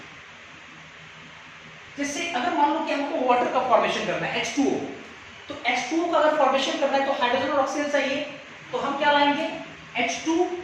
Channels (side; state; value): both; identical; correlation 1.00